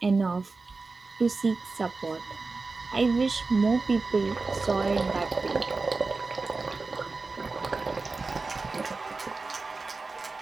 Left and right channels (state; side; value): quieter; left; 3.9 dB